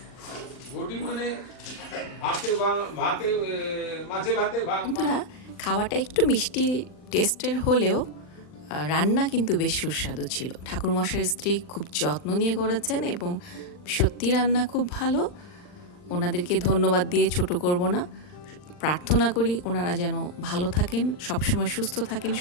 ঘটি মানে ভাতে মাছে ভাতে বন্ধুরা, খাওয়াটা একটু মিষ্টি টেস্টের হলেও রান্না কিন্তু বেশ সুস্বাদু ছিল। ঠাকুরমশাইয়ের স্ত্রী খুব যত্ন নিয়ে করেছেন এবং সত্যি রান্না খুব ভালো। ওনাদেরকে ধন্যবাদ দিয়ে ছোট করব না। প্রার্থনা করি ওনারা যেন ভালো থাকেন, সবসময় সুস্থ থাকেন,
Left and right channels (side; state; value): right; late; 39 ms